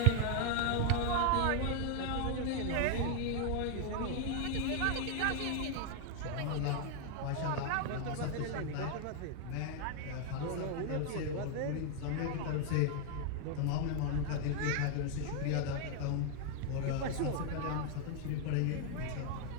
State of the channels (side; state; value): both; different; correlation 0.00